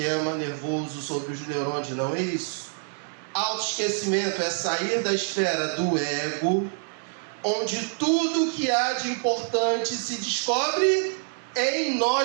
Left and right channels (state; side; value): silent; left; 56 dB below the other